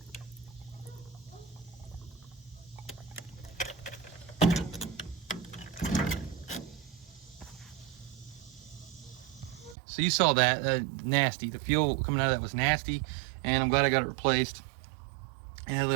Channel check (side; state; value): left; drops out; at 9.8 s